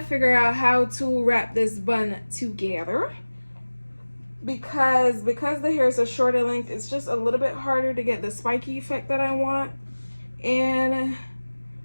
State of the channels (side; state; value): both; inverted; correlation -1.00